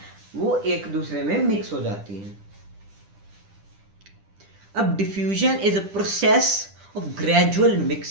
वो एक दूसरे में मिक्स हो जाती हैं। अब diffusion is a process of gradual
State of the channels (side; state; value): left; late; 10 ms